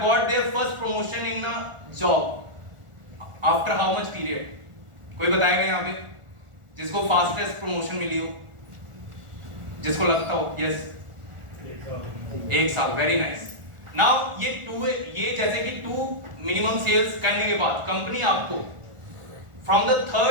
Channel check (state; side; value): late; left; 1.4 ms